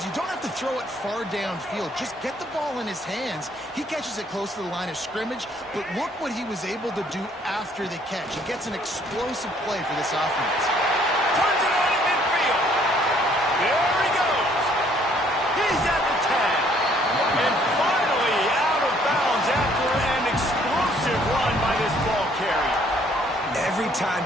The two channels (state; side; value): normal; both; correlation 0.63